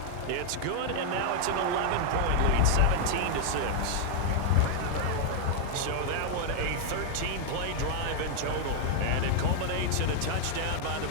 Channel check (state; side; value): different; both; correlation 0.00